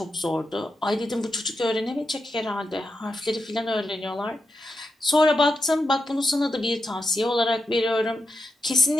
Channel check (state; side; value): normal; both; correlation 0.86